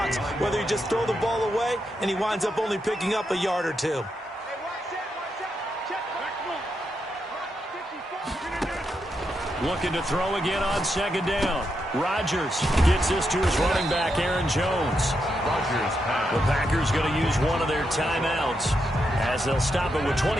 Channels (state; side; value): normal; both; correlation 0.83